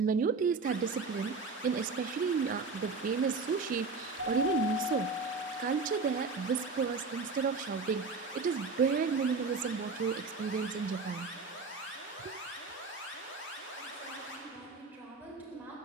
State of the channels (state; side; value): quieter; left; 4.3 dB